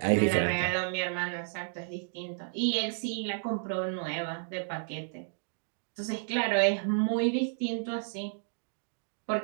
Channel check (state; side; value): silent; left; digital silence